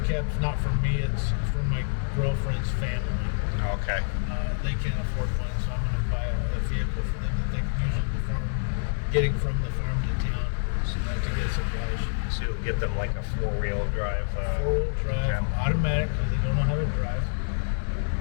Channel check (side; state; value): right; silent; 60 dB below the other